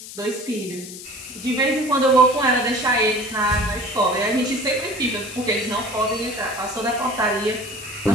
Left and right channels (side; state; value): left; noise; hiss, 13 dB below the sound